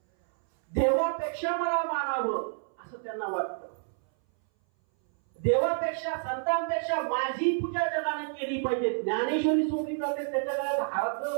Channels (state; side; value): silent; left; 59 dB below the other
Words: देवापेक्षा मला मानावं असं त्यांना वाटतं. देवापेक्षा, संतांपेक्षा माझी पूजा जगाने केली पाहिजे. ज्ञानेश्वरी सोडली जाते त्याच्या गळ्यात हात